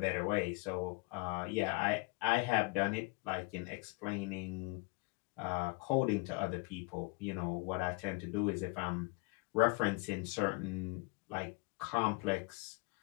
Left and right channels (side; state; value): right; quieter; 29.3 dB